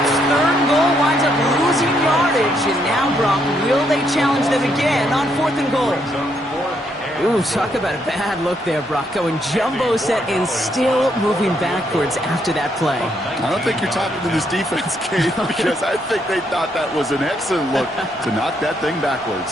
3rd and goal winds up losing yardage. And now, Brock, will they challenge them again on 4th and goal? Ooh, talk about a bad look there, Brock. Going jumbo set and still moving backwards after that play. I don't think you're talking to this defense, Kate, because I think they thought that was an excellent look to knock that thing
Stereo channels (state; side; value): normal; both; correlation 0.75